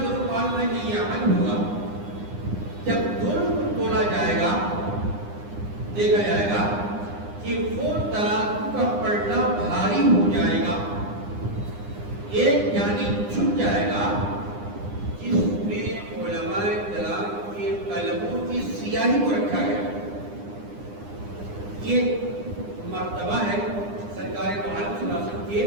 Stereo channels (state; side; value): late; left; 9.8 ms